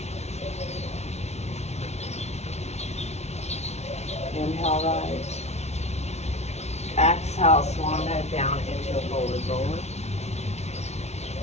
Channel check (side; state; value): right; late; 0.32 ms